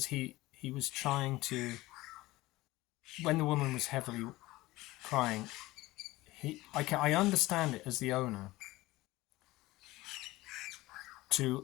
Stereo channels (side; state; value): right; quieter; 18.8 dB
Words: he was trying to, when the woman was heavily crying, I understand it as the owner,